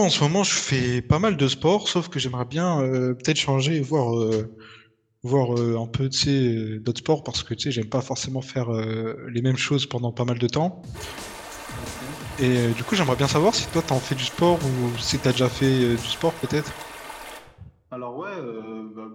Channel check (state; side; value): identical; both; correlation 1.00